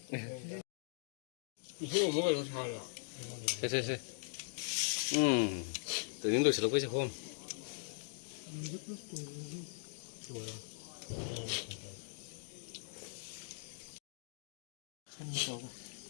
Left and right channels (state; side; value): silent; right; digital silence